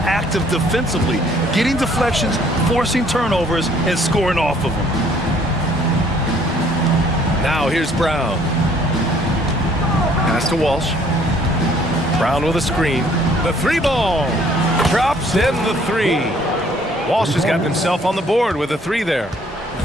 defensively, getting deflections, forcing turnovers, and scoring off of them. Now here's Brown. Pass to Walsh. Brown with a screen. The 3 ball. Drops in the 3. Walsh has gotten himself on the board with a 3 there.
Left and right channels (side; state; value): both; normal; correlation 0.60